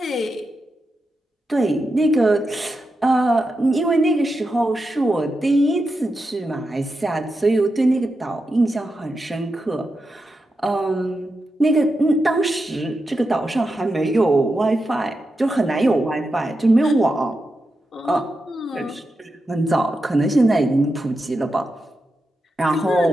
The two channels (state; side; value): normal; both; correlation 0.88